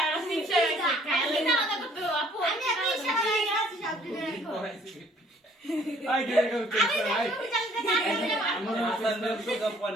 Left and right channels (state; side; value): normal; both; correlation 0.59